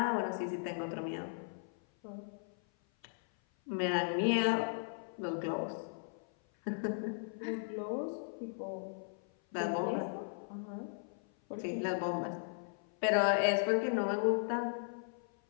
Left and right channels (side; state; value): right; silent; 53 dB below the other